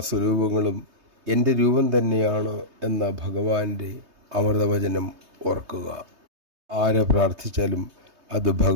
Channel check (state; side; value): late; left; 3.2 ms